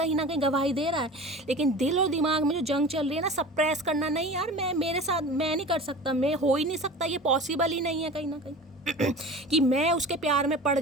ना कहीं गवाही दे रहा है, लेकिन दिल और दिमाग में जो जंग चल रही है ना, सप्रेस करना, नहीं यार मैं मेरे साथ मैं नहीं कर सकता, मैं हो ही नहीं सकता, ये पॉसिबल ही नहीं है कहीं ना कहीं कि मैं उसके प्यार में पड़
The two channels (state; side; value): normal; both; correlation 0.37